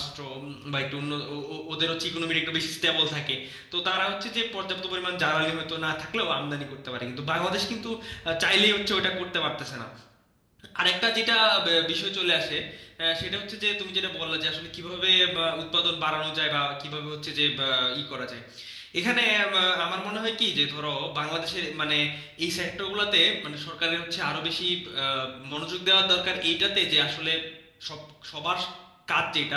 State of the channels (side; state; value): both; identical; correlation 1.00